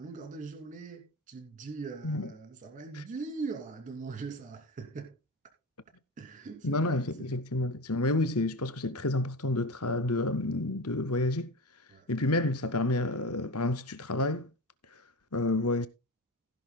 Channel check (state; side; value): normal; both; correlation 0.26